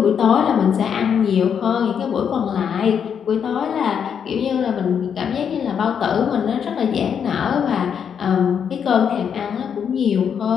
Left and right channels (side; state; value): right; quieter; 7.6 dB